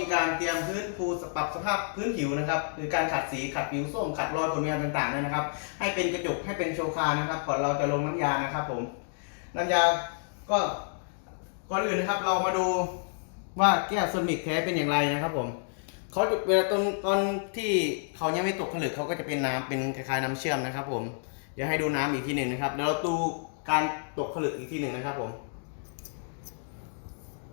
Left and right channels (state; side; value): silent; right; digital silence